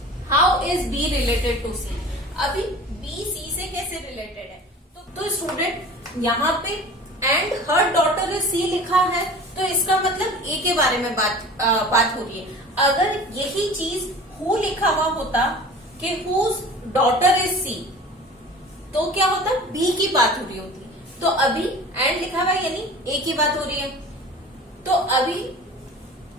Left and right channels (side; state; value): both; normal; correlation 0.40